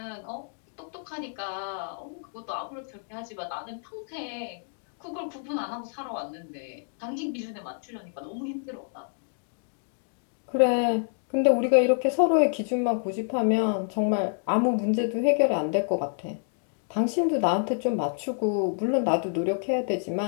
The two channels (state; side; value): silent; right; 59 dB below the other